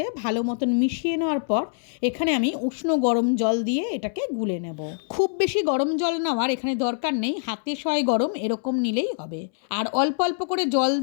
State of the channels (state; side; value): silent; right; 62 dB below the other